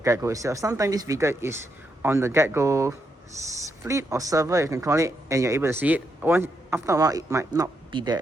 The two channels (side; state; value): both; normal; correlation 0.81